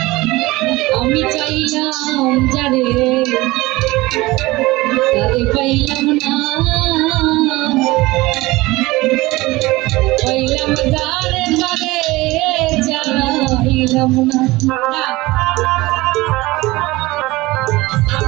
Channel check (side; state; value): left; quieter; 20.4 dB